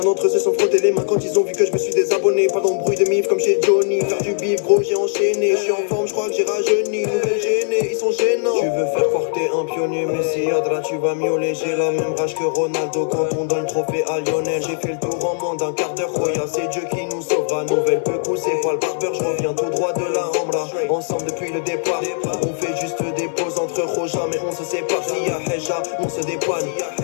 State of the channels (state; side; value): silent; right; digital silence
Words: d'entre eux se sont frottés les mains quand ils ont vu que je me suis désabonné. Pas d'embrouille de mif comme chez Johnny. Faire du bif gros j'ai enchaîné. Je suis en forme, je crois que j'ai rajeuni. Nouvelle gênée, ils sont gênants. Tu veux faire croire que t'es un pionnier, mais si Adra tu vas miauler. J'ai la même rage que Ronaldo quand on donne le trophée à Lionel. J'ai fait le tour en moins d'un quart d'heure. Roya c'est Dieu qui nous sauvera. Nouvelle peu c'est pas le barbeur. Je reviens tout droit de la Rambla. Ensemble depuis le départ. On fait juste des pauses entre Roja mais on se sépare. Si y'a Heja, on se dépanne.